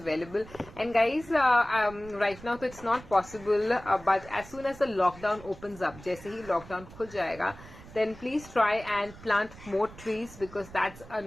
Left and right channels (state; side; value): noise; right; rumble, 18 dB below the sound